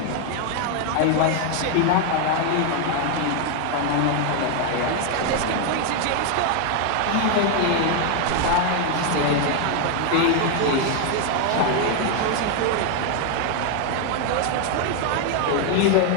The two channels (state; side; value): different; both; correlation 0.01